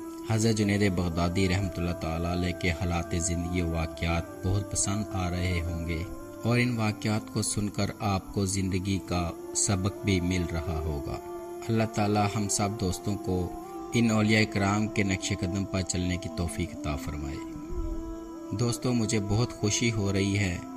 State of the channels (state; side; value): identical; both; correlation 1.00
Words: حضرت جنید بغدادی رحمۃ اللہ تعالیٰ علیہ کے حالات زندگی و واقعات بہت پسند آ رہے ہوں گے، اور ان واقعات کو سن کر آپ کو زندگی کا سبق بھی مل رہا ہوگا۔ اللہ تعالی ہم سب دوستوں کو ان اولیاء کرام کے نقش قدم پر چلنے کی توفیق عطا فرمائے۔ دوستوں، مجھے بہت خوشی ہو رہی ہے